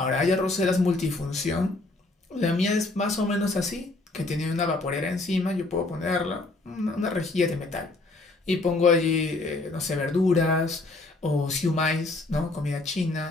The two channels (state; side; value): quieter; right; 3.1 dB